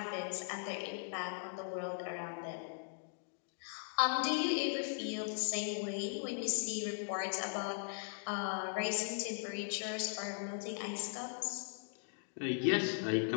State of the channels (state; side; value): silent; right; digital silence